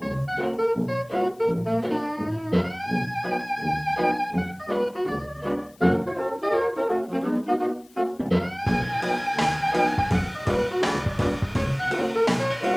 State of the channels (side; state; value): left; noise; hiss, 29 dB below the sound